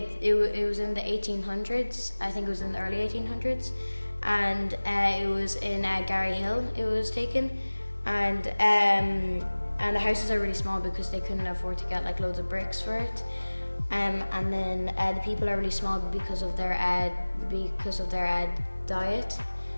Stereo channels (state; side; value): inverted; both; correlation -1.00